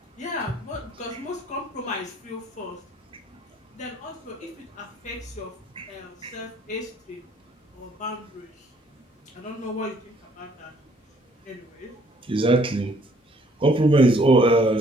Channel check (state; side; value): normal; both; correlation 0.63